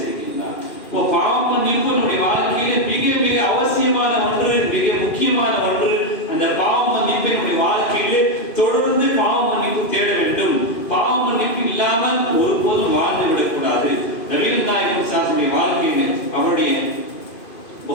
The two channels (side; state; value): right; late; 2.5 ms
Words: இப்போ பாவ மன்னிப்பு நம்முடைய வாழ்க்கையிலே மிக மிக அவசியமான ஒன்று, மிக முக்கியமான ஒன்று. அந்த பாவ மன்னிப்பை நம்முடைய வாழ்க்கையிலே தொடர்ந்து பாவ மன்னிப்பு தேட வேண்டும். பாவ மன்னிப்பு இல்லாமல் ஒருபோதும் வாழ்ந்து விடக்கூடாது. நபிகள் நாயகம் ஸல்லல்லாஹு வாழ்க்கையிலே அவருடைய